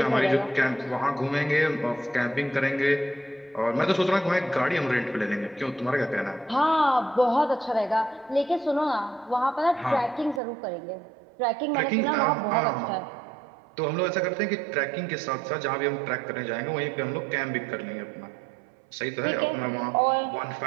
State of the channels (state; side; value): drops out; left; at 10.4 s